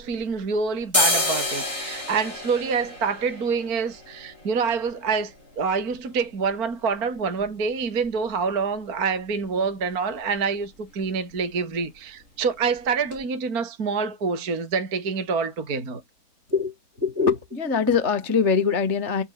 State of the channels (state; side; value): late; left; 3.8 ms